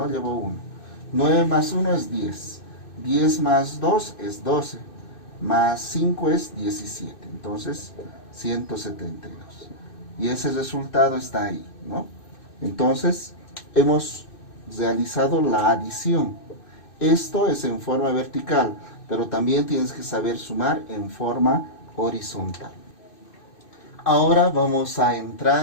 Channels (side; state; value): right; late; 2.6 ms